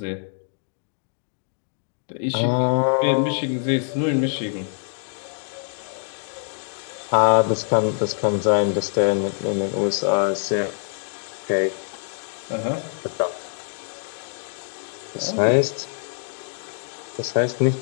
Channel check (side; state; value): right; silent; digital silence